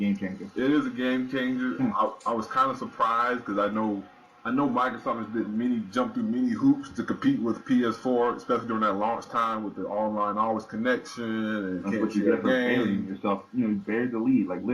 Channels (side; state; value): both; identical; correlation 1.00